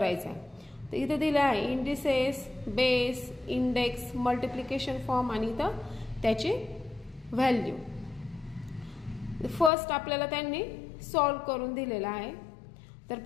आहे. तर इथे दिला आहे indices, base, index, multiplication form आणि इथं त्याची व्हॅल्यू. फर्स्ट आपल्याला त्यांनी सॉल्व करून दिलेला आहे. तर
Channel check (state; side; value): drops out; right; at 9.7 s